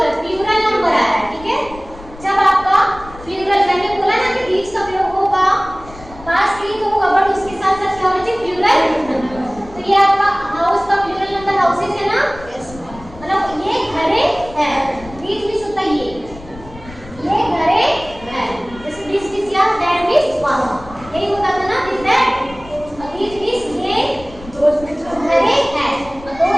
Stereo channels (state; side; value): noise; left; rumble, 18 dB below the sound